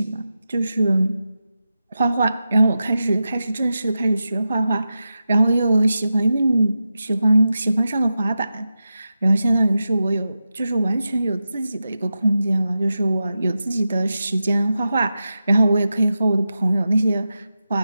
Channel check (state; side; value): inverted; both; correlation -0.91